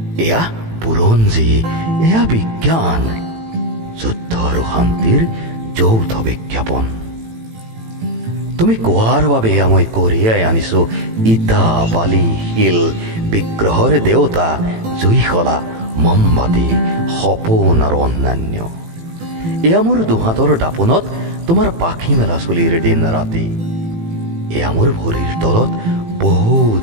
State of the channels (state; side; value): late; left; 18 ms